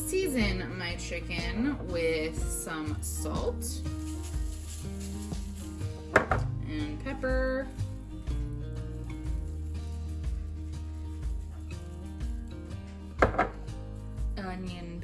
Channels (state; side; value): identical; both; correlation 1.00